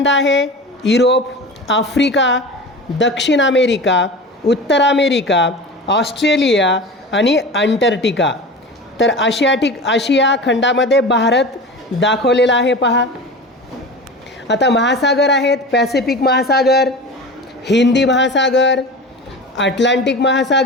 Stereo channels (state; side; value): normal; both; correlation 0.32